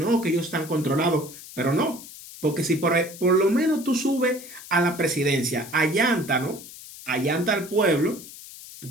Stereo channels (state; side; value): noise; left; hiss, 16 dB below the sound